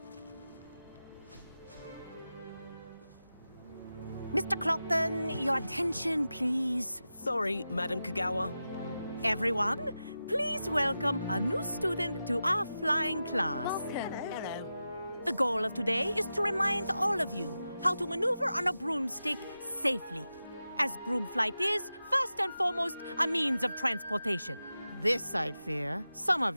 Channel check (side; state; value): both; inverted; correlation -0.92